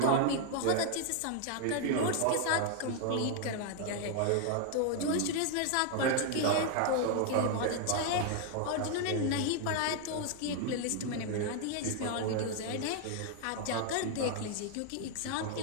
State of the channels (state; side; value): different; both; correlation 0.00